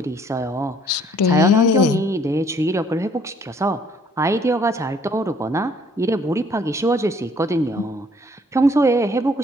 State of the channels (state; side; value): normal; both; correlation 0.61